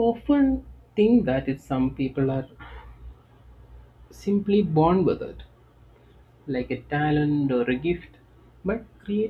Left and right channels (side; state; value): both; identical; correlation 1.00